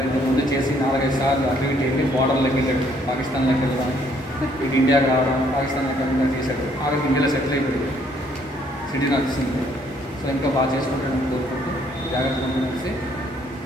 ముందు చేసి 4-5 సార్లు అటు ఇటు వెళ్ళి బార్డర్లోకి వెళ్ళాడు. పాకిస్తాన్లోకి వెళ్ళడం, ఇటు ఇండియాకి రావడం, పాకిస్తాన్లోకి వెళ్ళడం చేశాడు. ఆవిడకి ఇండియాలో సెటిల్ అయిపోయింది, సిటీ నడుస్తుంది. సో ఇంకా బాగా చేసుకుంటాను కోరుకుంటూ జాగ్రత్తగా కలిసి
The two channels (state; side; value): normal; both; correlation 0.66